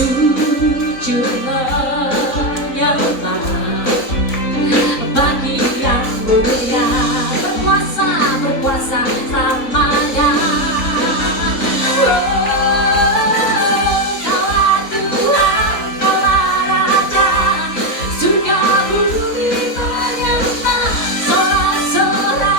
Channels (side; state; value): right; late; 3.9 ms